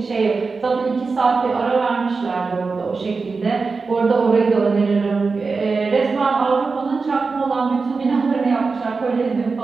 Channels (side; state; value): left; quieter; 4.4 dB